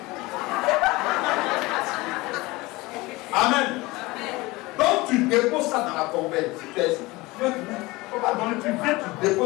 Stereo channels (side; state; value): right; quieter; 21.7 dB